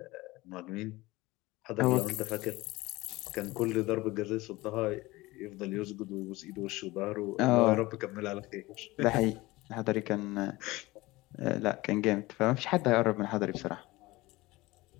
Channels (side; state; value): right; quieter; 20.3 dB